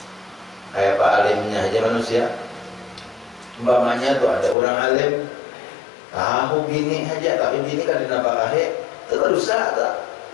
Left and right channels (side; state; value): right; drops out; at 4.5 s